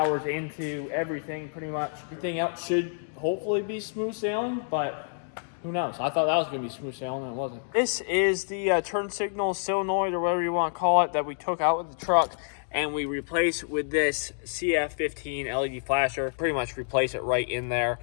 into everything pretty much. Everything else should hopefully be smooth sailing, but who knows? I thought that was going to be smooth sailing and it wasn't. This is the turn signal solenoid or whatever you want to call it that we took out with the truck. And we replace with this CF15 LED flasher. Pretty much replace it right in there.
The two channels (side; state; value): right; silent; digital silence